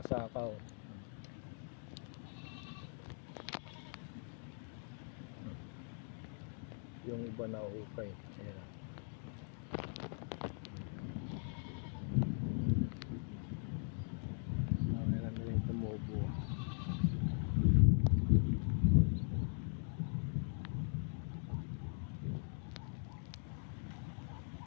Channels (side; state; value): right; silent; 51 dB below the other